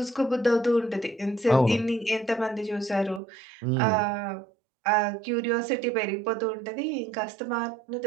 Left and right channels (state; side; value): drops out; left; at 3.2 s